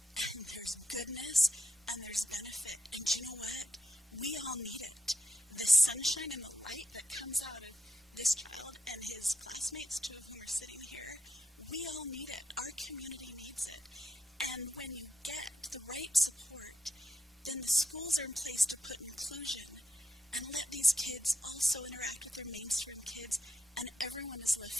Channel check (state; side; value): normal; both; correlation 0.83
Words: and there's goodness, and there's benefit. And you know what? We all need it. The sunshine and the light that comes out of this child and his classmates, 2 of whom are sitting here, we all need it. Our community needs it. And when you get the right support, then the schools are in place to put inclusion and let these kids also interact with their mainstream kids, and everyone is